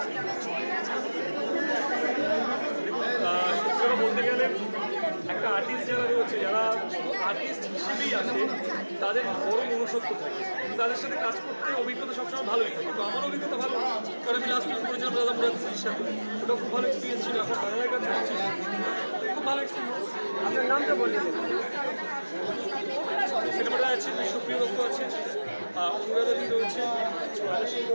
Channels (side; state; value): both; inverted; correlation -1.00